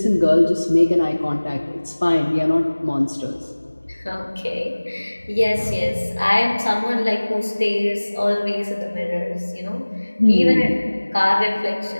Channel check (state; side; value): inverted; both; correlation -1.00